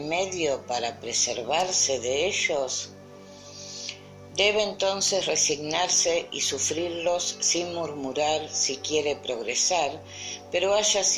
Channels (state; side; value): identical; both; correlation 1.00